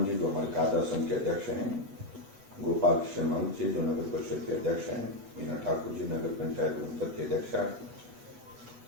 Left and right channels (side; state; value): left; late; 8.1 ms